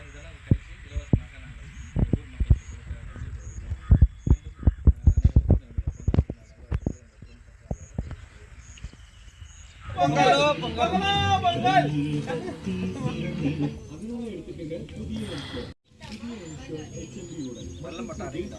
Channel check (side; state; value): both; identical; correlation 1.00